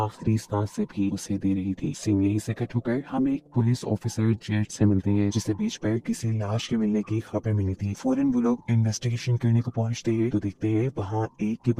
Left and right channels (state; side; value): identical; both; correlation 1.00